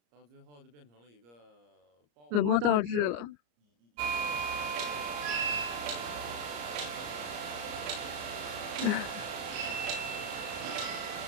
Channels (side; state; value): left; late; 34 ms